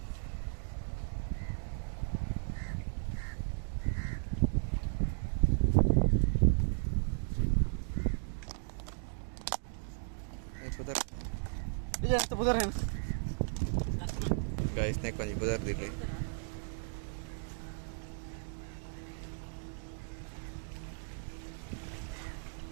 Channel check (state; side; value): silent; left; digital silence